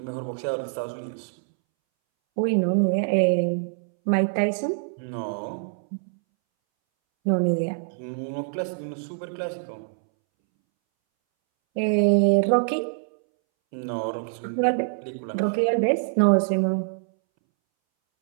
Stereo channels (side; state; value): left; silent; 62 dB below the other